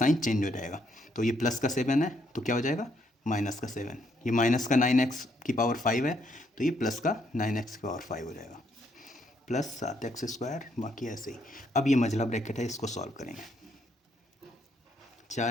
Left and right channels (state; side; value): normal; both; correlation 0.73